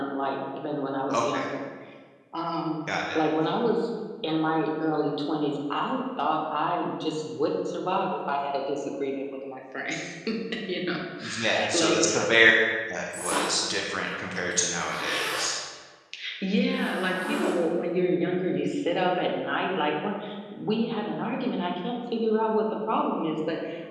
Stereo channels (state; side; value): identical; both; correlation 1.00